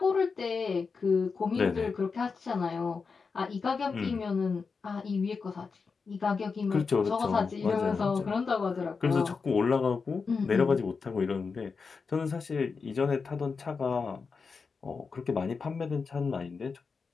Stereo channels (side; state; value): right; quieter; 5.0 dB